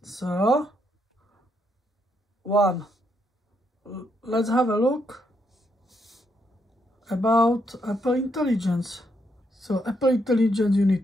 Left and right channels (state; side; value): normal; both; correlation 0.77